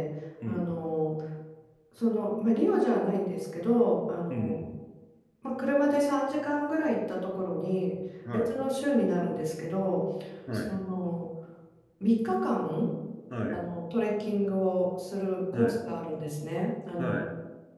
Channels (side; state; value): both; identical; correlation 1.00